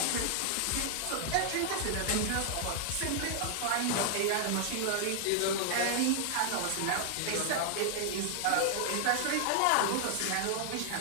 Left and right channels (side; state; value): both; different; correlation 0.00